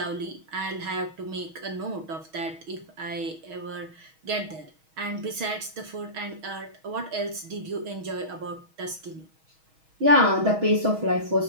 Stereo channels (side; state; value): left; late; 6.3 ms